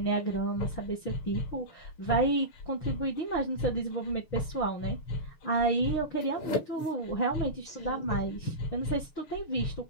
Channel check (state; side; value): late; right; 6.5 ms